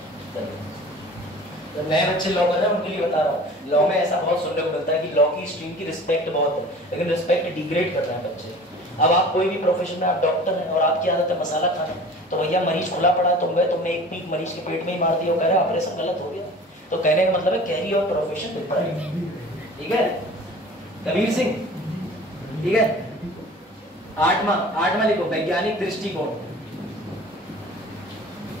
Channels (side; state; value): both; normal; correlation 0.42